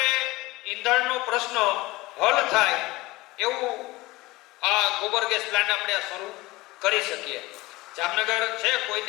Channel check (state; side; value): quieter; right; 20.4 dB